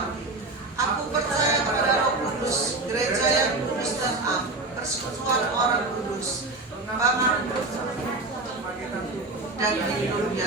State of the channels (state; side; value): quieter; left; 3.1 dB